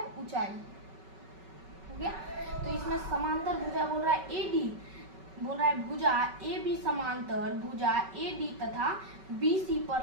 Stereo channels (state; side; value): late; left; 5.3 ms